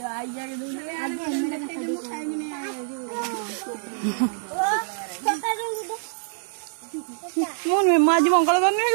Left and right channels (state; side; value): silent; left; digital silence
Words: मोन में माजी मंगल करने